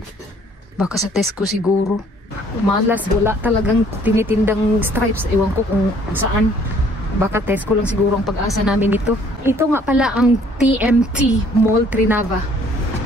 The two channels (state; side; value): normal; both; correlation 0.59